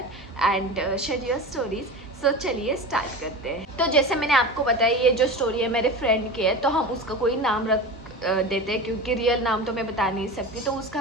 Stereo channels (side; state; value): both; normal; correlation 0.28